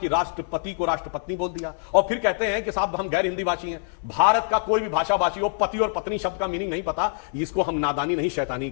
राष्ट्रपति को राष्ट्रपत्नी बोल दिया और फिर कहते हैं कि साहब हम गैर हिंदी भाषी हैं। भारत का कोई भी भाषा भाषी हो, पति और पत्नी शब्द का मीनिंग नहीं पता, इसको हम नादानी नहीं शैतानी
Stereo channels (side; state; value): right; silent; 62 dB below the other